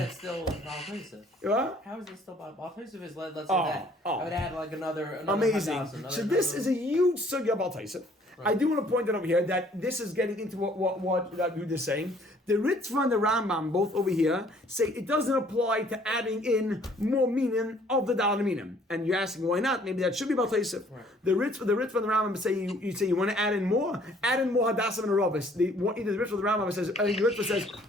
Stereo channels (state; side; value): normal; both; correlation 0.59